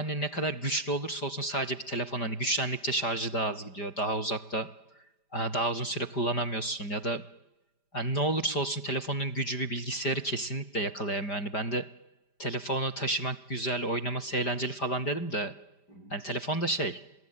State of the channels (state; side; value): late; right; 5.0 ms